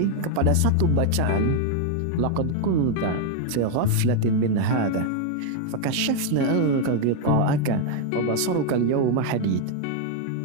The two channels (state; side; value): different; both; correlation 0.01